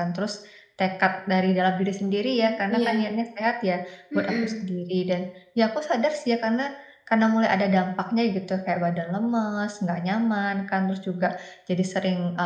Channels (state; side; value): identical; both; correlation 1.00